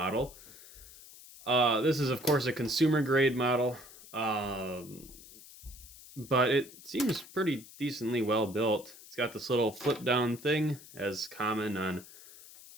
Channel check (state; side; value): noise; left; hiss, 19 dB below the sound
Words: This is, of course, a consumer grade model, but it seems pretty decently well built. It's got this little flip down thing, as common on